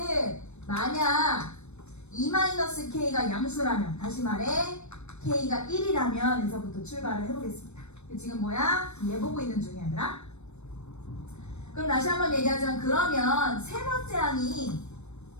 만약 2-K가 양수라면, 다시 말해 K가 1이라면 에서부터 출발을 해보겠습니다. 지금 뭐야? 얘 보고 있는 중이야 얘들아. 그럼 다시 한번 얘기하자면, 그러면 세 번째 항이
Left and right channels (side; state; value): right; late; 0.81 ms